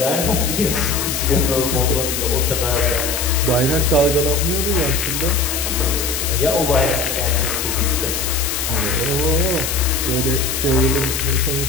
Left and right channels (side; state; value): left; noise; hiss, 2 dB below the sound